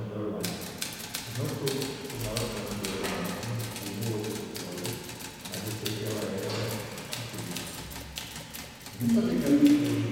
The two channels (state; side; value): identical; both; correlation 1.00